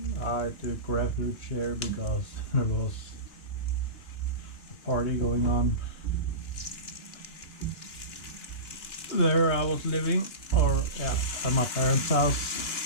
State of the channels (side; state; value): right; late; 2.8 ms